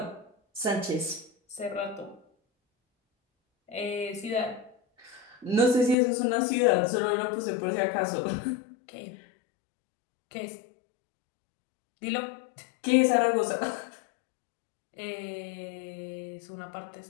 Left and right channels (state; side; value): drops out; right; at 6.0 s